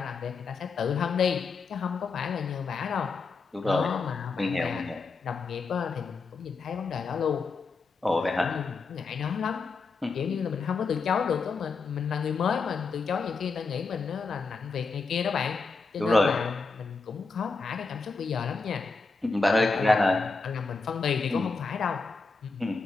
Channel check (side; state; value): right; quieter; 4.4 dB